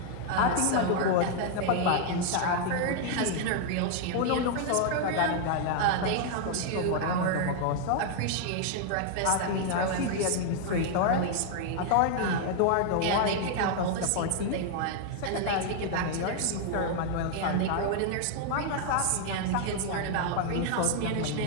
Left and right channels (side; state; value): both; different; correlation 0.00